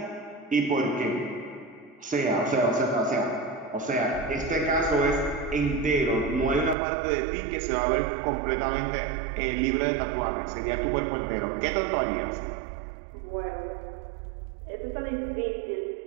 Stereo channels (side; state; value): left; drops out; at 6.8 s